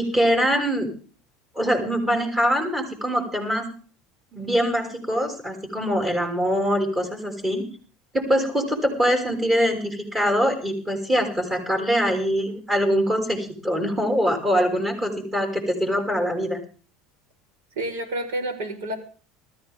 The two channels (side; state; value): both; normal; correlation 0.79